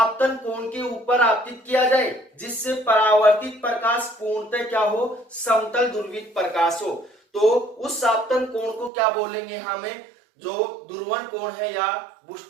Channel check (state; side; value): drops out; left; at 8.9 s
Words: कोण के ऊपर आपतित किया जाए जिससे परावर्तित प्रकाश पूर्णतः क्या हो? समतल ध्रुवित प्रकाश हो, तो उस आपतन कोण को क्या बोलेंगे? हमें जो ध्रुवण कोण है या